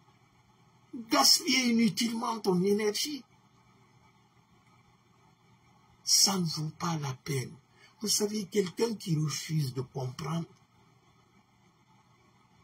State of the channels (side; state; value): both; identical; correlation 1.00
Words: gaspiller inutilement ton énergie. Ça ne vaut pas la peine. Vous savez, quelqu'un qui refuse de comprendre,